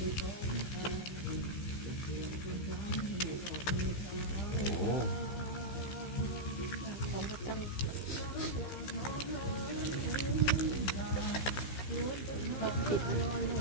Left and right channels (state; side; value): late; right; 15 ms